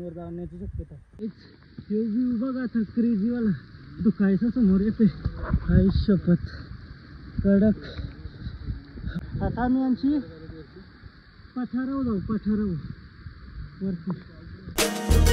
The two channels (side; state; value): both; identical; correlation 1.00